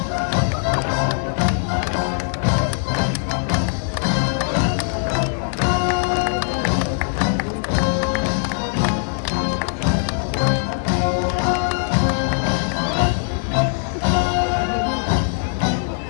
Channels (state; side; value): silent; right; digital silence